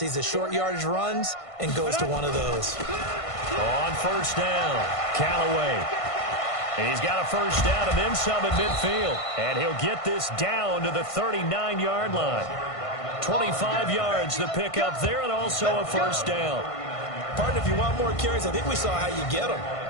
the short yardage runs, and goes to one of those. On 1st down, Callaway. He's got a first down and then some at midfield. And he'll get this down to the 39-yard line. 25 yards the pickup there, and also a first down. Partner, if you want more carries, I think we saw how you get them.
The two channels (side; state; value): right; late; 1.5 ms